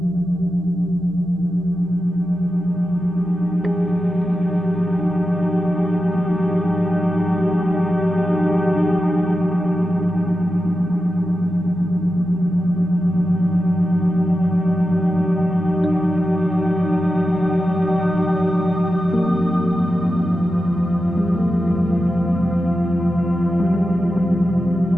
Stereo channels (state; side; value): normal; both; correlation 0.91